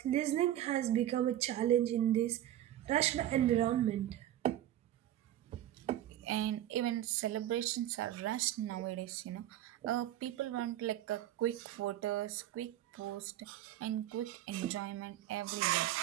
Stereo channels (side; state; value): left; quieter; 12.7 dB